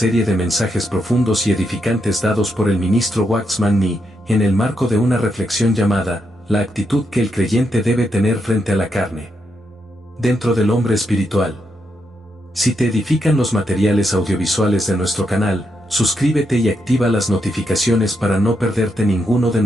de mensajes profundos y edificantes dados por el ministro Waxman Nee, en el marco de una reflexión llamada, la actitud que el creyente debe tener frente a la carne. Dentro del hombre espiritual. Si te edifican los materiales audiovisuales de nuestro canal, suscríbete y activa las notificaciones para no perderte ninguno de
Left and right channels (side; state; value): both; normal; correlation 0.81